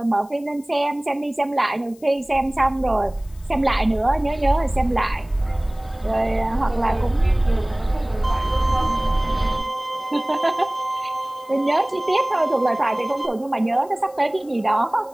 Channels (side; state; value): left; noise; hiss, 27 dB below the sound